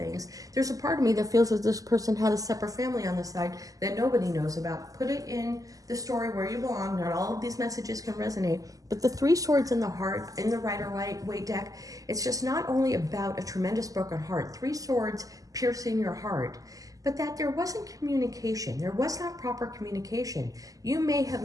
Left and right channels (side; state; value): left; late; 0.17 ms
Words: There's a part of me that feels that this person had a separate family on the side that nobody knows about. Put it in the story where you belong. Not all of these messages can resonate, but the 3 swords in the heart, in the Rider-Waite deck, it's just not only about a tremendous broken heart, 3 swords piercing your heart, but that there wasn't communication. There was not proper communication. You may have